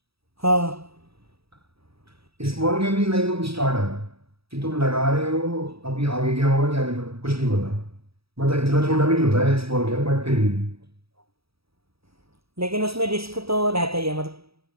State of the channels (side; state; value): left; late; 0.77 ms